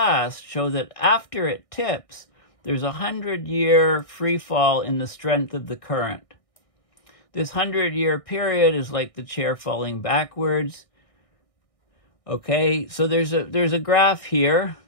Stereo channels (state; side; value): late; right; 1.6 ms